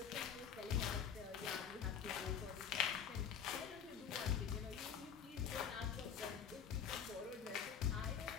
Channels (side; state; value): right; quieter; 7.8 dB